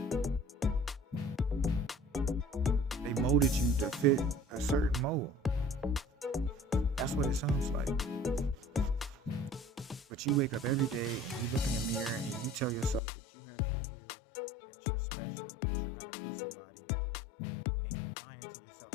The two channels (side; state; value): right; drops out; at 13.0 s